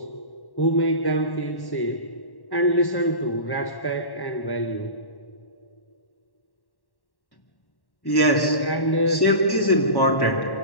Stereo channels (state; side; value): late; right; 1.1 ms